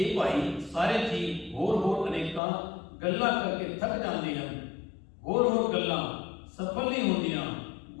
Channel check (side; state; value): right; drops out; at 2.4 s